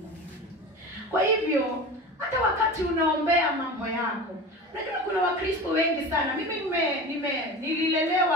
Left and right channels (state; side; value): normal; both; correlation 0.32